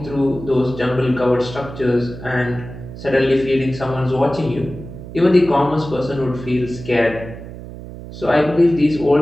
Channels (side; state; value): right; noise; hum, 13 dB below the sound